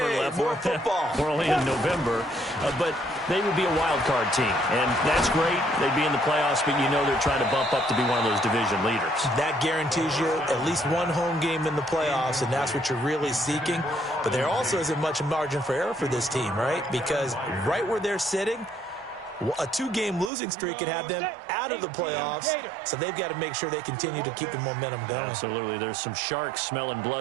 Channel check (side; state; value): left; drops out; at 20.3 s